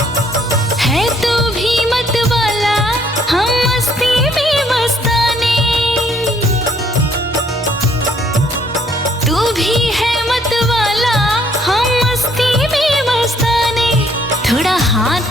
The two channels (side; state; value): both; normal; correlation 0.65